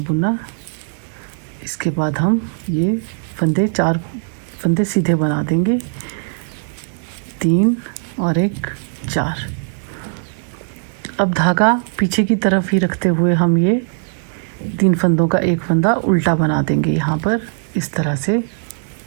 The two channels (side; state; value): left; silent; digital silence